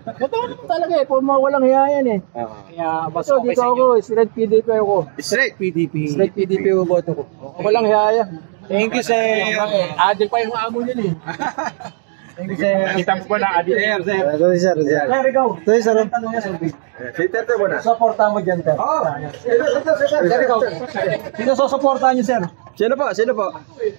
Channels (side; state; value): left; silent; digital silence